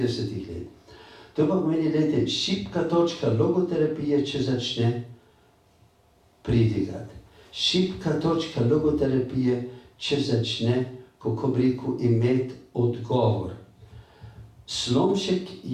let. To pa pomeni, gledajte, šibka točka logoterapije, če začne pridigati. Šibka točka logoterapije, če začne, kako bi rekel, imeti odgovor. Slomšek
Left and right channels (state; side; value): identical; both; correlation 1.00